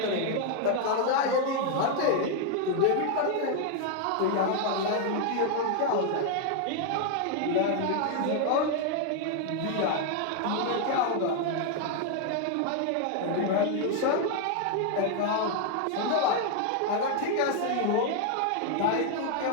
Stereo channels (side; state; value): both; different; correlation 0.00